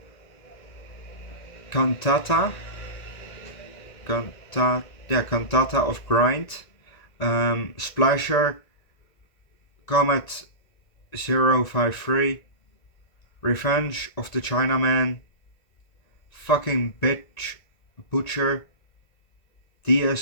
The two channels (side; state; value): right; late; 1.9 ms